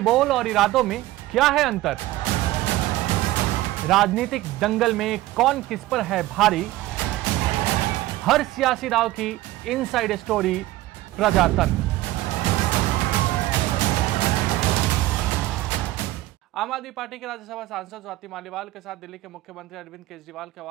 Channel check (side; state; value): left; quieter; 16.5 dB